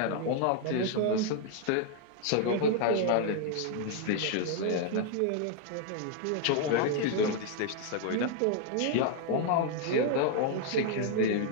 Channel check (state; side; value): different; both; correlation 0.00